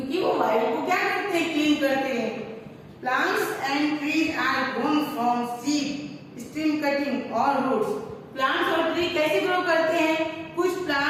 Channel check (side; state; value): both; identical; correlation 1.00